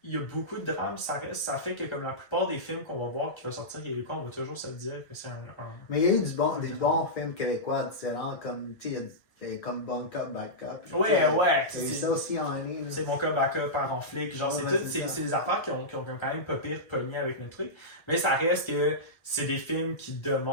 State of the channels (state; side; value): late; right; 1.8 ms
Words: y a beaucoup de drames, ça fait que comme la plupart des films qu'on va voir qui vont sortir québécois, on va toujours se dire que c'est un Mais il y a eu des bons films québécois différents, comme, tu sais, comme Bon Cop, Bad Cop. Ouais. C'est ça aussi en ligne. C'est mon cas backup par en flic. Genre, c'est des affaires qui ont quand même pas pire pogné avec notre truc. Mais ça reste que c'est des films qui